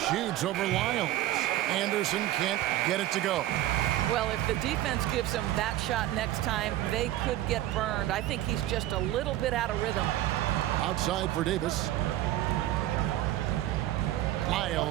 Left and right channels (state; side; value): quieter; left; 14.0 dB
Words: shoots over Lyles. Anderson can't get it to go. Well, if the defense gives him that shot next time, they could get burned. I think he's just a little bit out of rhythm. Outside for Davis.